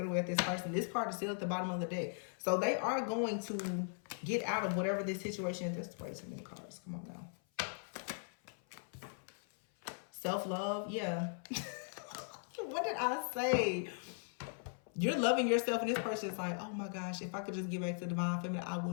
at this person. This card is still at the bottom of the deck. So they are going to get out of whatever this situation is. This way too many cards. Come on now. Self-love. Yeah. What did I say? You're loving yourself, and this person is like, oh my gosh, if I could just get back to Divine Feminine, I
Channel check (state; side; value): silent; right; 52 dB below the other